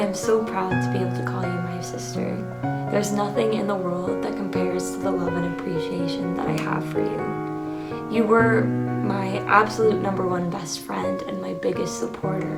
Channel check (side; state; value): both; identical; correlation 1.00